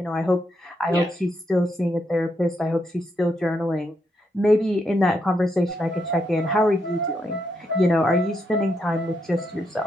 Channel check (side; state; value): both; normal; correlation 0.79